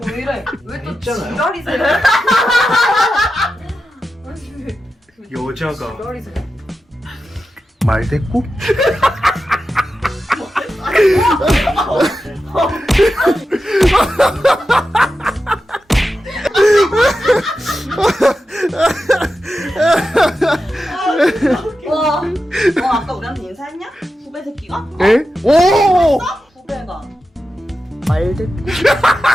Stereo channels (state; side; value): normal; both; correlation 0.91